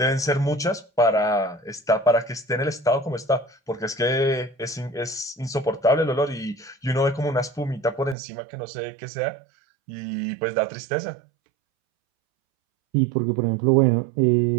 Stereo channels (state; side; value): drops out; left; at 8.2 s